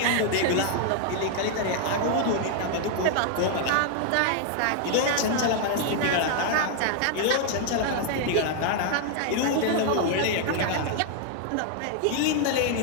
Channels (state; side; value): different; both; correlation 0.00